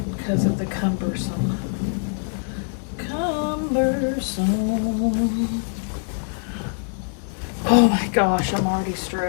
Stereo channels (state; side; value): silent; right; digital silence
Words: of the cumbersome. Oh my gosh, I'm already